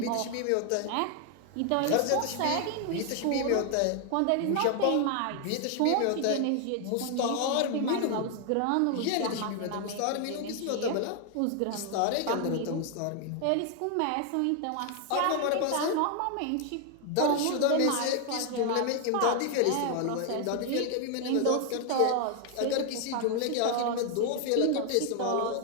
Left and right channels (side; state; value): both; different; correlation 0.00